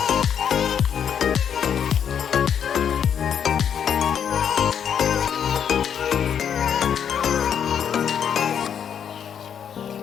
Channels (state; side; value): quieter; right; 8.3 dB